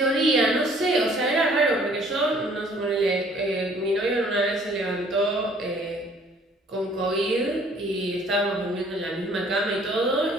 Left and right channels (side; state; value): both; normal; correlation 0.58